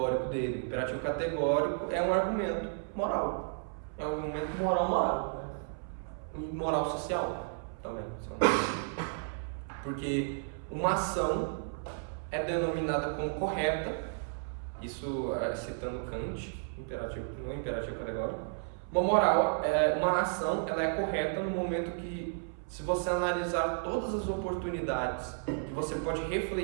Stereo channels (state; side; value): silent; left; 56 dB below the other